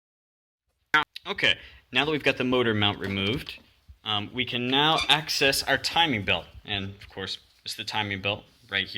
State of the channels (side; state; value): both; identical; correlation 1.00